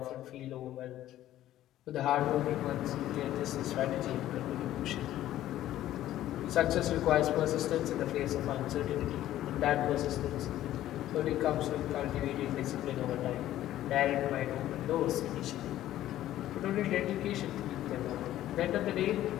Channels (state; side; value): quieter; right; 13.4 dB